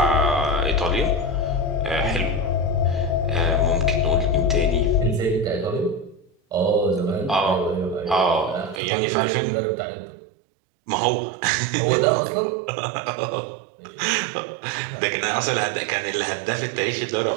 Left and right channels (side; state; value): left; drops out; at 8.8 s